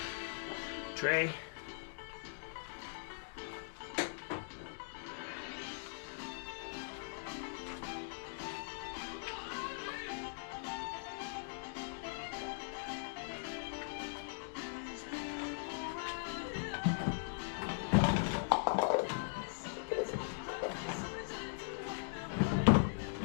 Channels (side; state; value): right; silent; digital silence